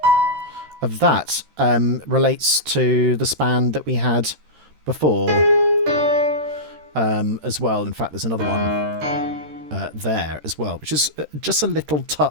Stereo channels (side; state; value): left; late; 13 ms